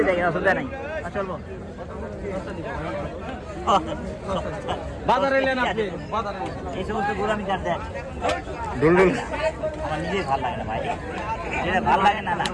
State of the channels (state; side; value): identical; both; correlation 1.00